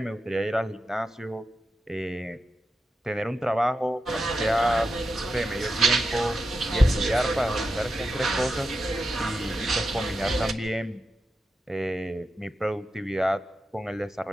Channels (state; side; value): normal; both; correlation 0.89